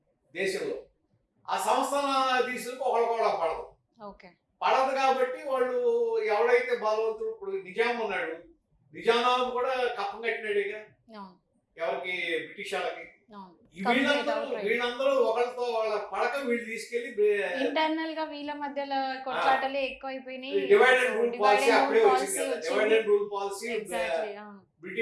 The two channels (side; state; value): both; identical; correlation 1.00